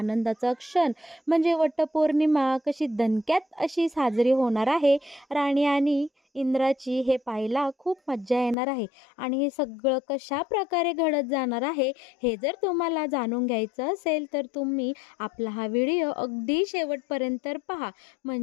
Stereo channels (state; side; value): drops out; right; at 8.6 s